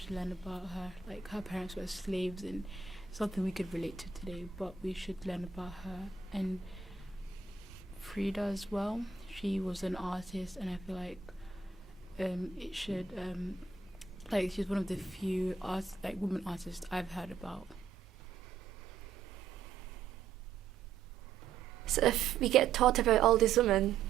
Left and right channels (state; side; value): quieter; left; 5.9 dB